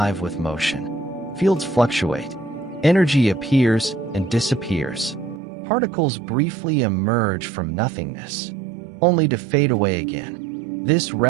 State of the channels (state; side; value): drops out; left; at 5.4 s